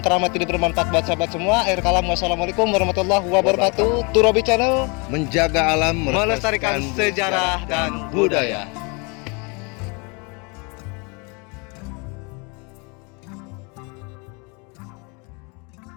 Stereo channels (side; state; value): right; quieter; 31.1 dB